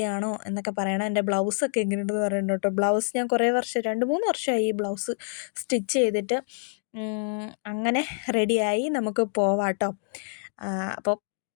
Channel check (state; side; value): silent; right; digital silence